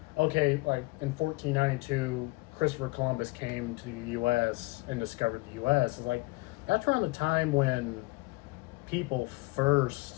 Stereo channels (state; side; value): quieter; right; 23.2 dB